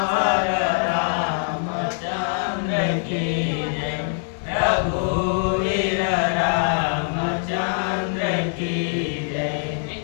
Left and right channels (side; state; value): right; silent; digital silence